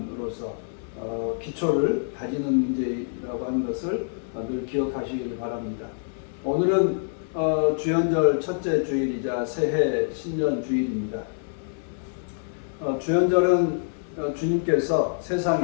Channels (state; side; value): silent; right; digital silence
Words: 기초를 다지는 문제라고 하는 것을 늘 기억하시길 바랍니다. 오늘은 주연절 첫째 주일이자 새해 신년 주일입니다. 주연절은 주님께서